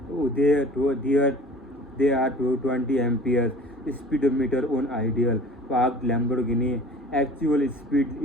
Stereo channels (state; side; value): normal; both; correlation 0.44